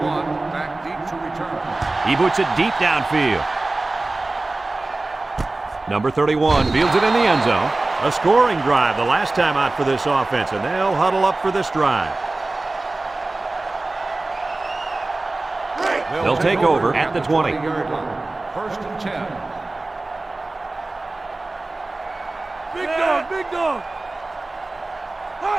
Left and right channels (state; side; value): quieter; left; 3.1 dB